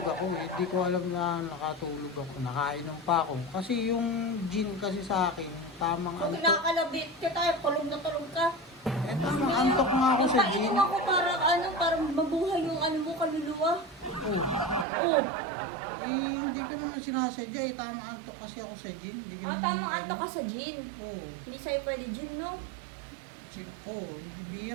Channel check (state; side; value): drops out; left; at 14.9 s